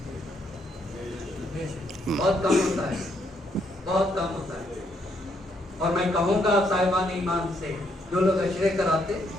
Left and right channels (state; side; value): normal; both; correlation 0.74